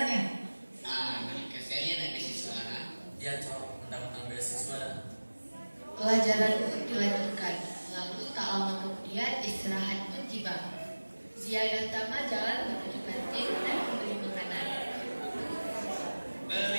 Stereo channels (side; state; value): both; inverted; correlation -1.00